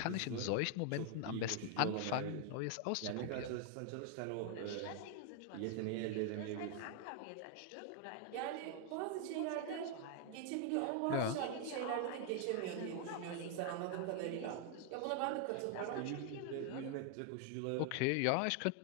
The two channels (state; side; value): different; both; correlation 0.00